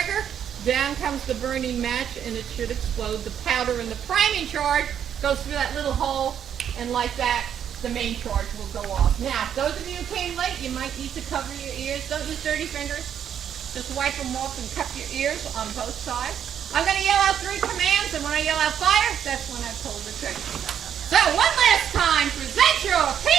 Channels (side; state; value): left; quieter; 9.1 dB